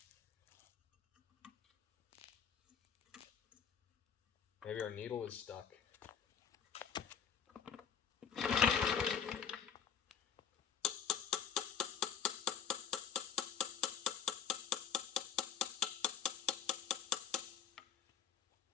Maybe our needle is stuck.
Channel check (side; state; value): right; quieter; 7.6 dB